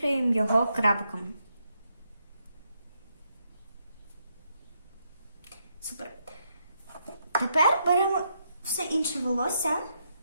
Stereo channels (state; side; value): inverted; both; correlation -0.79